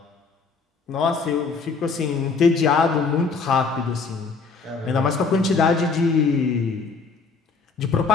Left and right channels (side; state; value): right; quieter; 4.7 dB